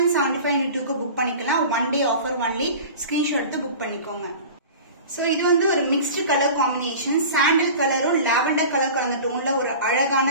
into 2க்கு புக் பண்ணிக்கலாம். 1 day ஆஃபர் ஒன்லி. ஸ்கிரீன்ஷாட் எடுத்து புக் பண்ணிக்கோங்க. சோ இது வந்து ஒரு மிக்ஸ்டு கலர் காம்பினேஷன். சாண்டல் கலரும் லாவெண்டர் கலர் கலந்த டோன்ல ஒரு அழகான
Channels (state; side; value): inverted; both; correlation -0.37